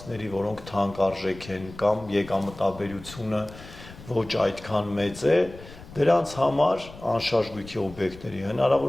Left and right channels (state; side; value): noise; left; rumble, 17 dB below the sound